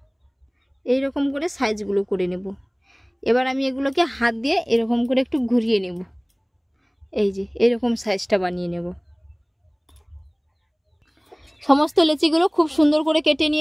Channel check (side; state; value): both; identical; correlation 1.00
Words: এইরকম করে সাইজগুলো করে নেব। এবার আমি এগুলোকে হাত দিয়ে এরকম করে একটু ঘুরিয়ে নেব। এই যে এরকম সাইজটা বানিয়ে নেব। সমস্ত লেচিগুলো খুব সুন্দর করে কেটে